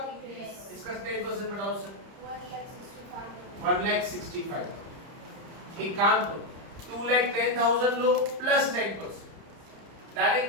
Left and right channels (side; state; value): left; late; 30 ms